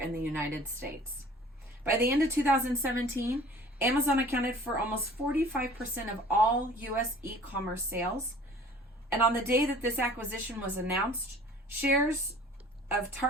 the United States. By the end of 2017, Amazon accounted for almost 45% of all U.S. e-commerce sales. And on the day that this acquisition was announced, shares of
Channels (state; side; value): normal; both; correlation 0.48